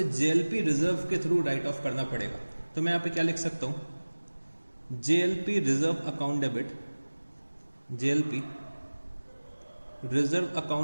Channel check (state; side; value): inverted; both; correlation -1.00